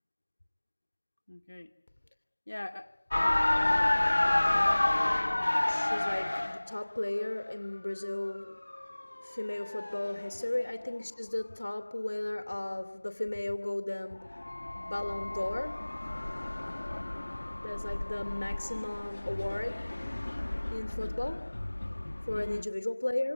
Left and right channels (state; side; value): inverted; both; correlation -1.00